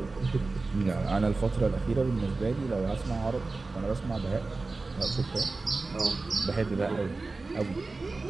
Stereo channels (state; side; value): quieter; left; 3.6 dB